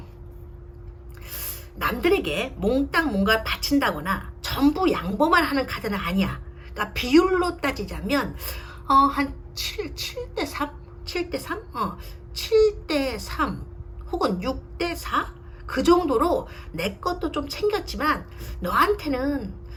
남들에게 몽땅 뭔가 바친다거나 전부 양보만 하는 카드는 아니야. 그러니까 비율로 따지자면 한 7대 3? 7대 3? 7대 3 혹은 6대 4? 그 정도로 내 것도 좀 챙겼지만 너한테는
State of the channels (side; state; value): both; identical; correlation 1.00